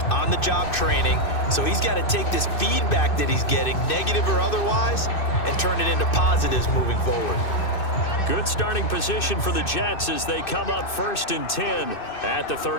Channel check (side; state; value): right; late; 2.6 ms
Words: on-the-job training, so he's got to take this feedback that he's getting, negative or otherwise, and turn it into positives moving forward. Good starting position for the Jets as they come up 1st and 10 at the